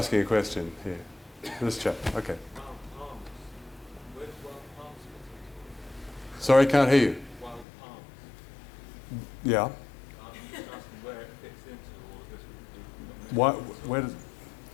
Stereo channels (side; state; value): right; drops out; at 7.7 s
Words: a question here? This chap. Okay. Sorry, can't hear you. Yeah. Where